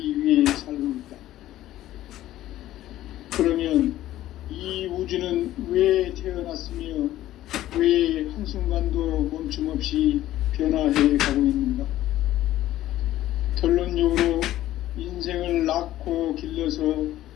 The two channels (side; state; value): right; quieter; 14.1 dB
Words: 위해 살고 있다. 그러면 이 우주는 왜 태어났으며 왜 한순간도 멈춤 없이 변화해 가고 있는가? 결론적으로 인생을 낳고 길러서